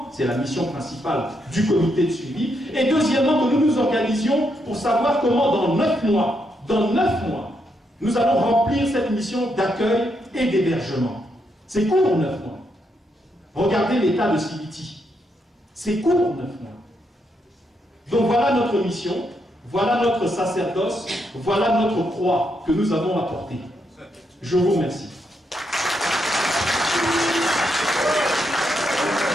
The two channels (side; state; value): both; normal; correlation 0.79